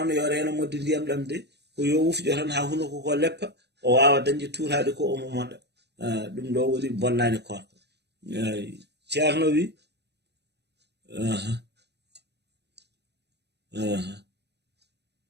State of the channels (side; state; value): left; late; 0.49 ms